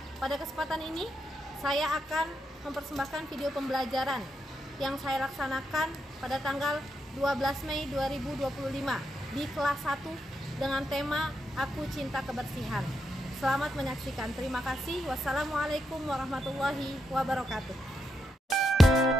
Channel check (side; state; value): both; normal; correlation 0.83